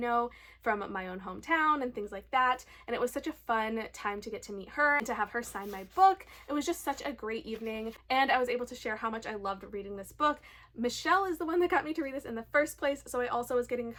from my own hometown and things like that. And it was such a fun time to get to meet her and to have her sign my book. It was just such a great evening, and I was able to share how much I loved reading this book. Michelle is the one that got me to read this in the first place, so I also was getting a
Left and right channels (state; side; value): identical; both; correlation 1.00